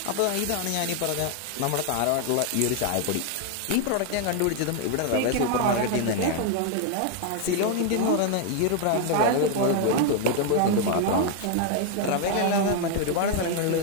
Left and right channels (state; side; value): different; both; correlation 0.00